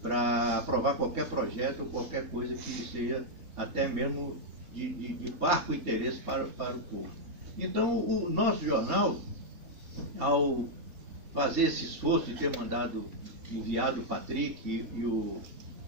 para aprovar qualquer projeto ou qualquer coisa que seja até mesmo de parco interesse para o povo. Então, o nosso jornal, ao fazer esse esforço de ter enviado o Patrick e o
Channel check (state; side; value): late; left; 4.2 ms